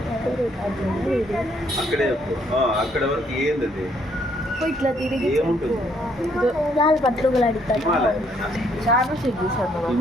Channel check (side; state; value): both; normal; correlation 0.68